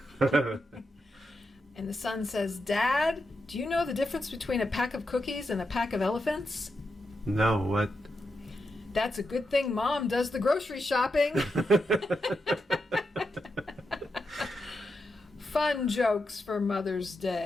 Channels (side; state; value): both; normal; correlation 0.86